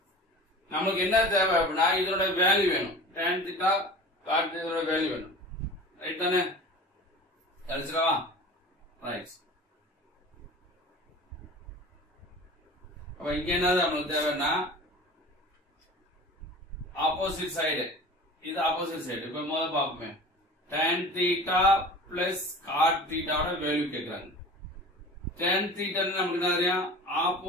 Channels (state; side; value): normal; both; correlation 0.39